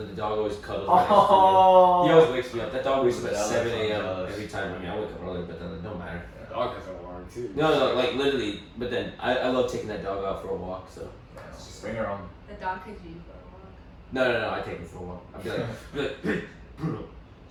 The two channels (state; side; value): identical; both; correlation 1.00